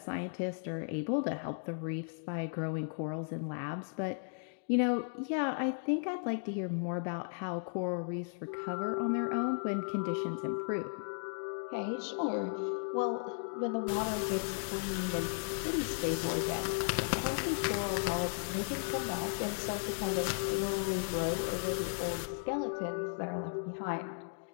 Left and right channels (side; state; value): right; silent; digital silence